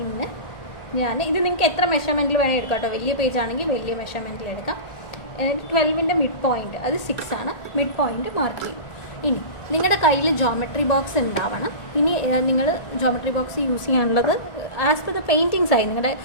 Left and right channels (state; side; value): late; right; 1.4 ms